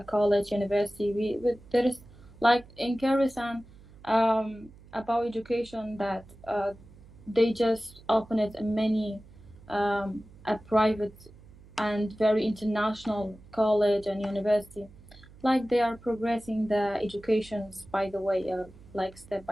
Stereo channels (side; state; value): right; noise; hum, 22 dB below the sound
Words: college, university. There is like in Kyrgyzstan about education that they just open it in many a private and very international college and university. Like they are progressing the educations by the way, like step